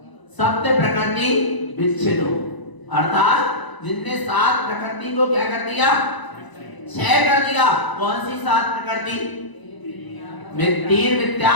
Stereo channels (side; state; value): right; late; 1.0 ms